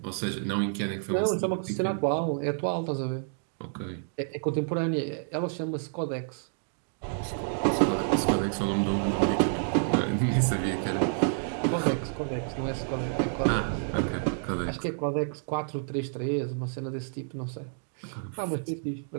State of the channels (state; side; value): silent; left; digital silence